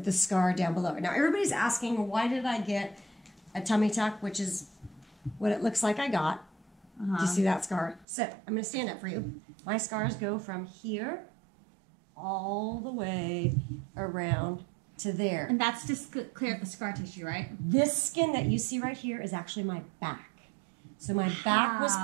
the scar down below. Now, everybody's asking, why did I get a tummy tuck, which is what it looks like I got. Do you see that scar? So, I'm going to stand up for you. My scars go from here all the way around to there. And that's just clear up the scar tissue, right? This skin that you see right here is actually my back. So my back was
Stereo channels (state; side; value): drops out; left; at 8.1 s